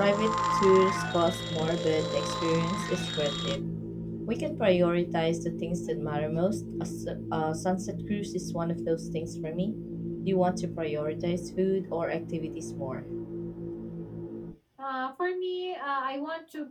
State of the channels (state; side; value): identical; both; correlation 1.00